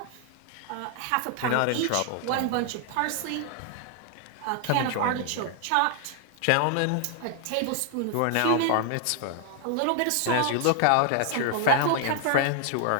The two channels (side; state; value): both; different; correlation 0.00